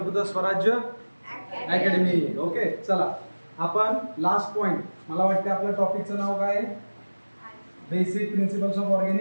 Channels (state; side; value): inverted; both; correlation -1.00